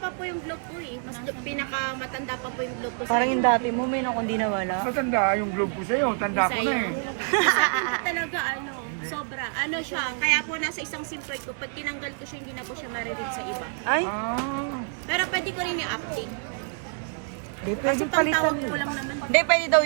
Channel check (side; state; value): left; silent; 55 dB below the other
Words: po yung globe po eh. Mas pinakamatanda pa po yung globe po sa Parang yung dati mo, may kung di nawala. Matanda yung globe ko sa'yo. Tanda ko na sa'yo. eh. Talaga ano, sobra. Ano siya, kaya po nasa isang SIM card ko, pag tinanggal ko siya, hindi na po siya mariread sa iba. Ay, Ah. Pero pwede ko rin i-update. Kasi pantawag ko lang naman. hindi, pwede daw